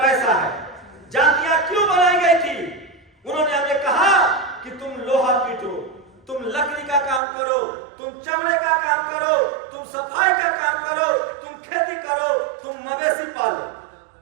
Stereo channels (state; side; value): drops out; left; at 7.2 s